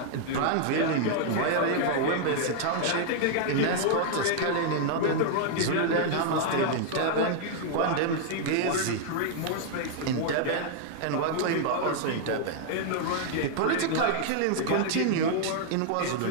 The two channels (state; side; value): different; both; correlation 0.00